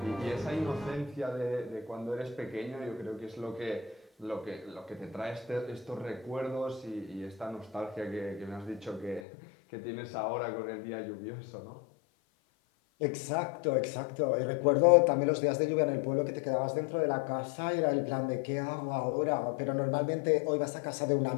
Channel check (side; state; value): right; drops out; at 9.2 s